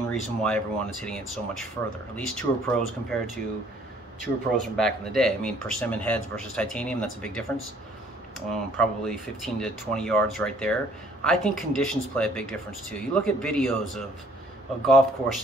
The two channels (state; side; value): normal; both; correlation 0.60